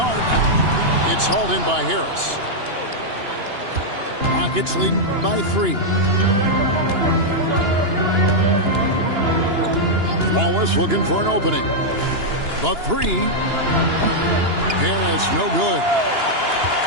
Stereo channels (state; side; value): late; left; 2.9 ms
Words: arc. It's hauled in by Harris. Rockets leading by 3. Wallace looking for an opening. The 3. Harris no good.